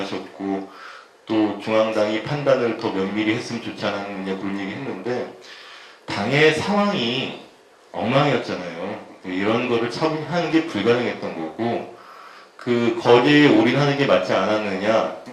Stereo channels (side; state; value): both; identical; correlation 1.00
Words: 또 중앙당이 판단을 더 면밀히 했으면 좋지 않았느냐 그런 얘기 했는데 당의 상황이 엉망이었잖아요. 이런 거를 처분하는 게 불가능했던 거고 그 거제에 올인하는 게 맞지 않았느냐